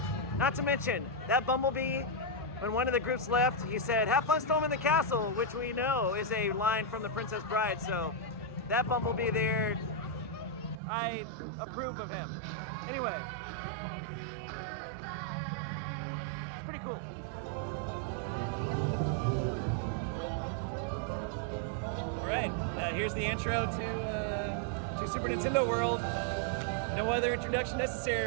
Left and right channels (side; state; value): left; drops out; at 10.8 s